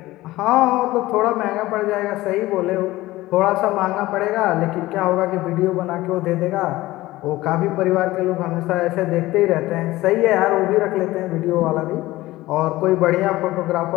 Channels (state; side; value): quieter; right; 17.8 dB